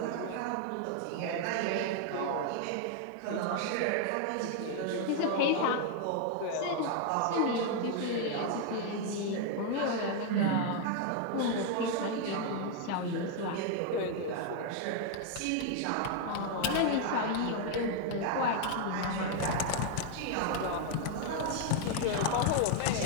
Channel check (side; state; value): both; different; correlation 0.00